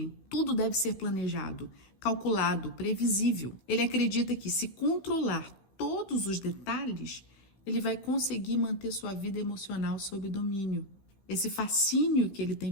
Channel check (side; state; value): right; late; 15 ms